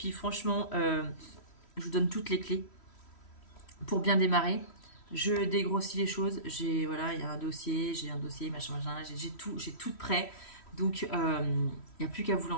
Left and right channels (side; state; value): right; late; 3.1 ms